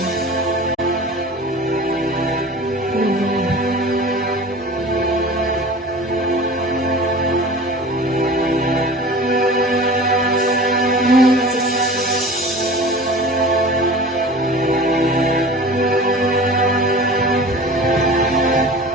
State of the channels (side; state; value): both; normal; correlation 0.39